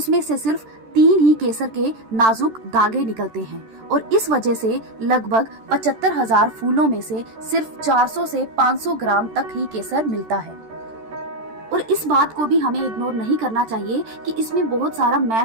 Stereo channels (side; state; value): left; late; 13 ms